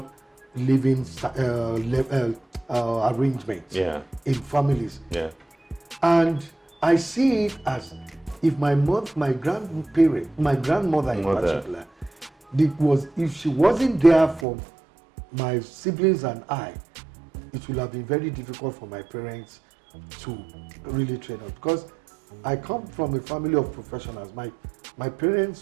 living arrangement in families. Yeah. And I see it as if my grandmother in particular, if she wasn't there for my siblings and I, it would have been very difficult for my parents to really train us, because I come from a family of professionals. My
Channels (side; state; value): left; drops out; at 14.5 s